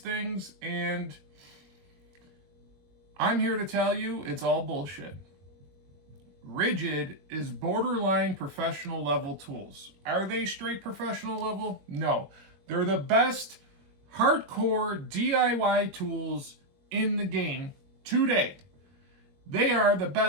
and I'm here to tell you it's all bullshit. Ridgid is borderline professional level tools. Are they straight professional level? No. They're the best hardcore DIY tools in the game today. They are the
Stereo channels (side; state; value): left; late; 21 ms